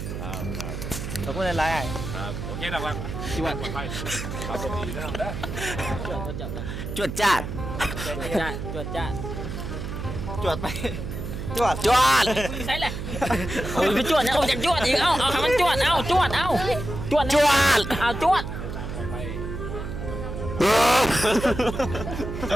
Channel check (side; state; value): right; noise; hum, 6 dB below the sound